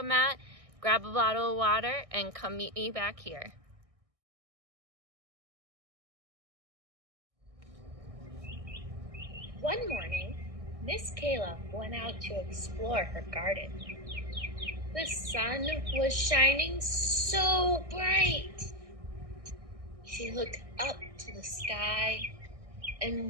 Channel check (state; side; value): late; left; 1.6 ms